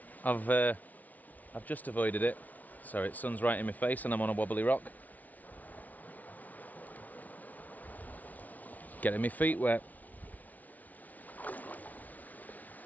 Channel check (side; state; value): right; late; 0.075 ms